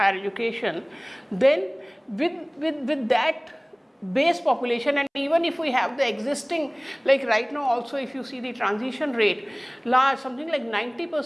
education, then with that base population, and even if we have the existing, like right now also if you see the transition rate, large, something like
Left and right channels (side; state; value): both; identical; correlation 1.00